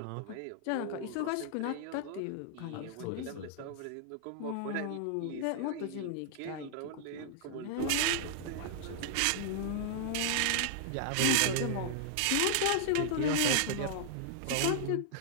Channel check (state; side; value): different; both; correlation -0.01